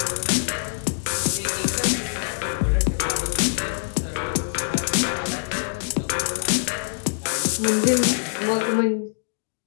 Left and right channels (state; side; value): silent; right; digital silence